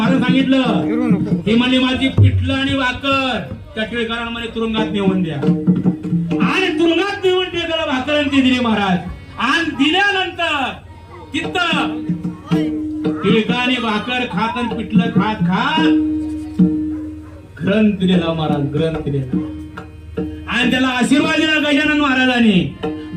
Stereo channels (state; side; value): identical; both; correlation 1.00